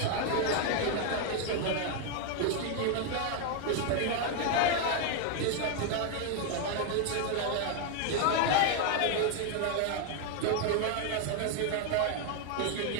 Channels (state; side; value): different; both; correlation 0.01